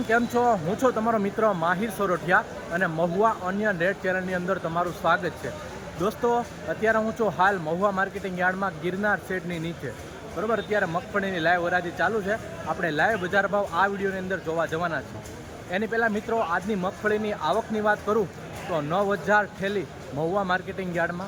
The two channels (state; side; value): identical; both; correlation 1.00